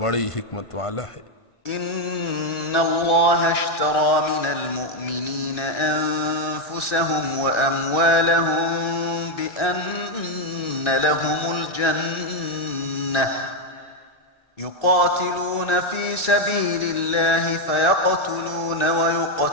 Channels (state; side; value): late; right; 1.7 ms